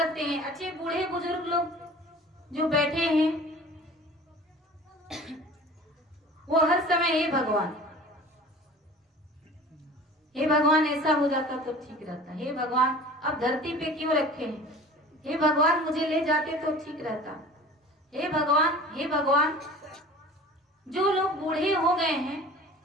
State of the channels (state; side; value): normal; both; correlation 0.43